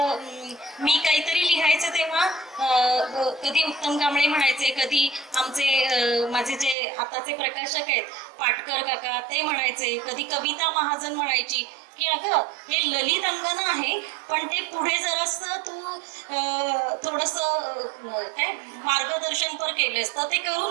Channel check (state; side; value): drops out; left; at 6.8 s